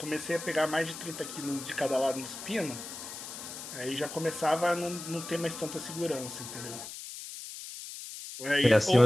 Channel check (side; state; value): left; noise; hiss, 10 dB below the sound